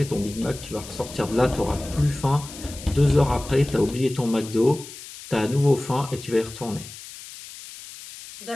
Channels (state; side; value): noise; left; hiss, 15 dB below the sound